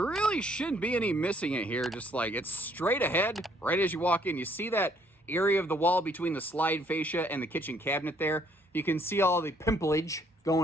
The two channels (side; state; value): both; normal; correlation 0.65